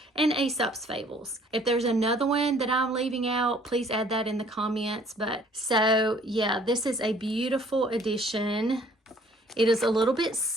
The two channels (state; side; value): normal; both; correlation 0.57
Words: and Aesop's Fables. If there's another one that I'm leaving out, please add that in the comments. But so yeah, this is a beautiful edition. It is a little bit